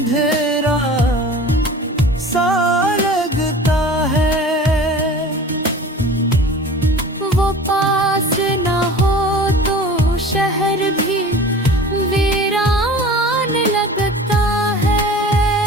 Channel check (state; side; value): normal; both; correlation 0.40